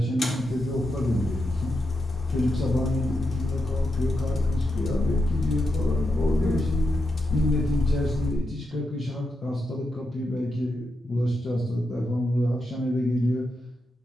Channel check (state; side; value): normal; both; correlation 0.86